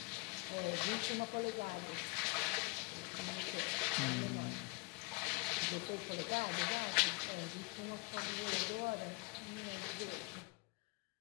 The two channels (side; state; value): right; quieter; 28.5 dB